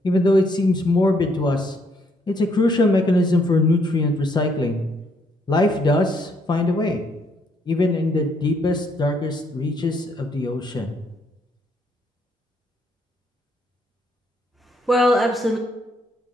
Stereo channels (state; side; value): normal; both; correlation 0.71